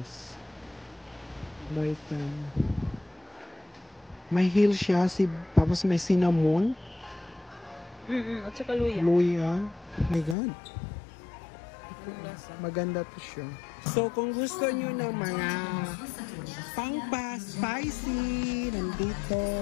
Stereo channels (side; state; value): right; drops out; at 10.4 s